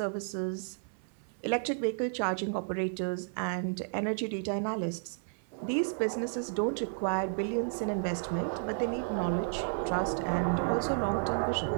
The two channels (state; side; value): silent; left; 56 dB below the other